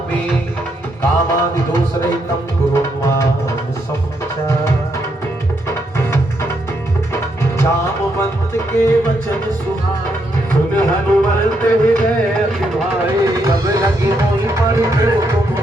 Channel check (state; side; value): normal; both; correlation 0.77